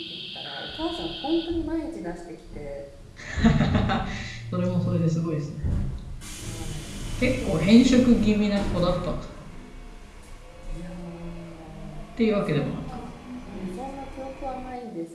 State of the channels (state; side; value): identical; both; correlation 1.00